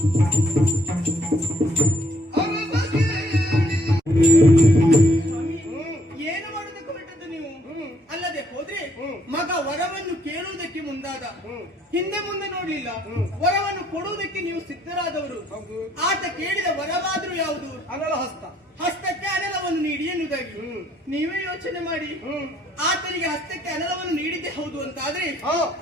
ಏನು ಮಾಡೋದಕ್ಕೆ ಹೊರಟದ್ದು ನೀವು? ಅಲ್ಲದೆ ಹೋದ್ರೆ ಮಗ ವರವನ್ನು ಕೇಳುವುದಕ್ಕೆ ಮುಂದಾದ, ಹಿಂದೆ ಮುಂದೆ ನೋಡ್ಲಿಲ್ಲ, ವರವನ್ನು ಕೊಡುವುದಕ್ಕೆ ನೀವು ಸಿದ್ಧರಾದವರು. ಆತ ಕೇಳಿದ ವರವಾದ್ರೂ ಯಾವುದು? ಅನಲ ಹಸ್ತ. ಹಸ್ತಕ್ಕೆ ಅನಲವನ್ನು ನೀಡಿ ಎನ್ನುವುದಾಗಿ ನೀವೇ ಯೋಚನೆ ಮಾಡಿ. ಆತನಿಗೆ ಹಸ್ತಕ್ಕೆ ಅನಲವನ್ನು ನೀಡಿದ್ದೆ ಹೌದು ಅಂತಾದ್ರೆ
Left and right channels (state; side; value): normal; both; correlation 0.67